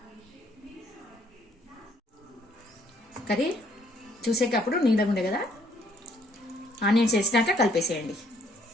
కర్రీ చూసేటప్పుడు నీళ్ళగా ఉండే కదా, ఆనియన్స్ వేసినాక కలిపేసేయండి.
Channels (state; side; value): normal; both; correlation 0.66